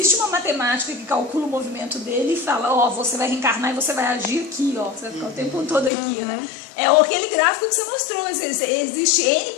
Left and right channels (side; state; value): right; drops out; at 5.9 s